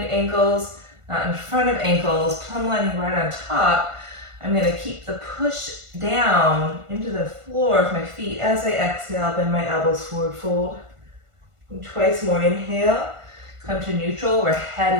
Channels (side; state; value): left; late; 1.5 ms